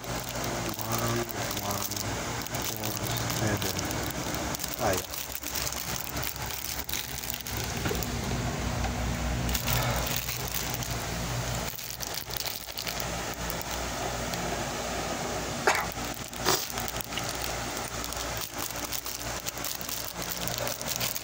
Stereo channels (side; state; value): both; identical; correlation 1.00